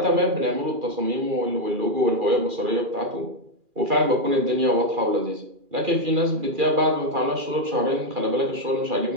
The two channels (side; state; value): left; late; 2.4 ms